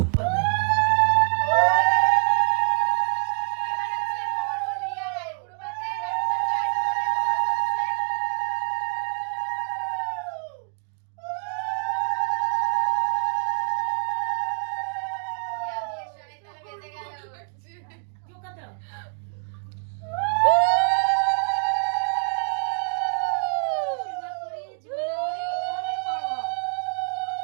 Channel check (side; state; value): left; silent; 61 dB below the other